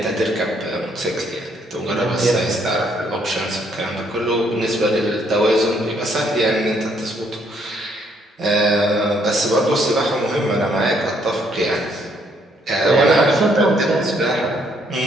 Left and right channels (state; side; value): normal; both; correlation 0.69